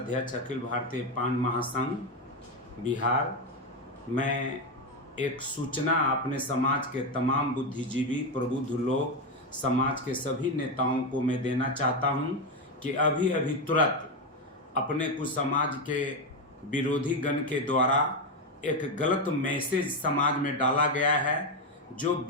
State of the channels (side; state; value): both; normal; correlation 0.10